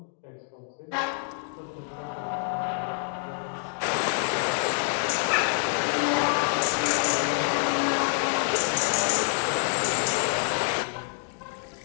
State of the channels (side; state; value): right; silent; 60 dB below the other